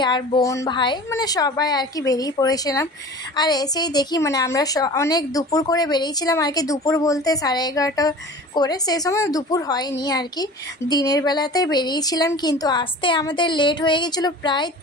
আর বোন, ভাই, মানে সবাই আর কি বেরিয়ে পড়েছিলাম। আর এসেই দেখি মানে আমরা অনেক দুপুর করে বেরিয়েছিলাম আর কি। দুপুর বলতে 11:30 করে, সেই সময় দুপুর হয়নি আর কি, দিনের বেলাতে বেরিয়েছিলাম। কিন্তু আসতে আমাদের লেট হয়ে গেছিলো প্রায়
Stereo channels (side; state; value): both; normal; correlation 0.39